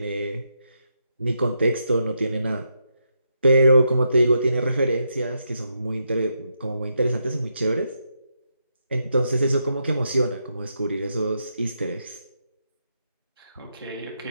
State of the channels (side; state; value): both; inverted; correlation -0.82